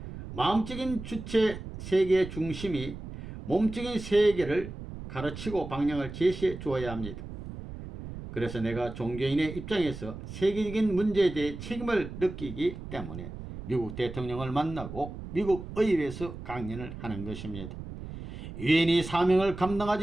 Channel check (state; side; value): noise; right; rumble, 10 dB below the sound